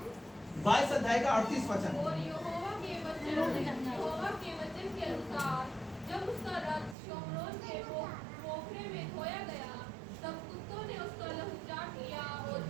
22 अध्याय का 38 वचन। और यहोवा के वचन के अनुसार जब उसका रथ शोमरोन के पोखरे में धोया गया, तब कुत्तों ने उसका लहू चाट लिया, और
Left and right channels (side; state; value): left; drops out; at 7.0 s